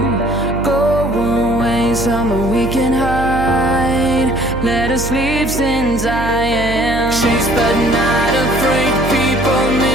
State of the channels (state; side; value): noise; right; hum, 7 dB below the sound